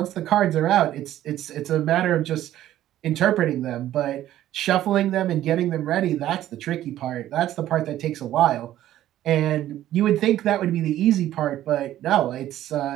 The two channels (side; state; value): left; quieter; 13.0 dB